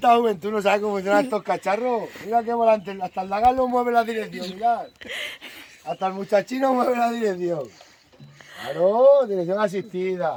juventud no sabe cómo funcionan estos cacharros. Mira qué volante, hasta el Dagal lo mueve la dirección, mirad. Hasta el muchachino mueve la dirección. Claro, dirección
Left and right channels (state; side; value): identical; both; correlation 1.00